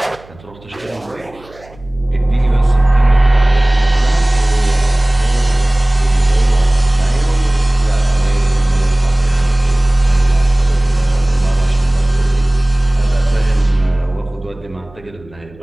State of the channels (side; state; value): right; noise; hum, 25 dB below the sound